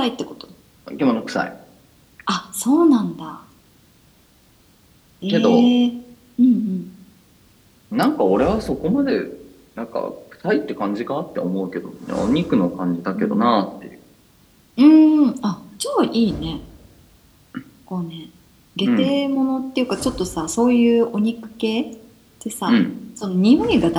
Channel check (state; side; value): identical; both; correlation 1.00